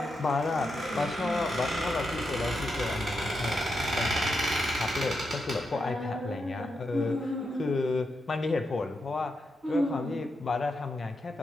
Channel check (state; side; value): normal; both; correlation 0.85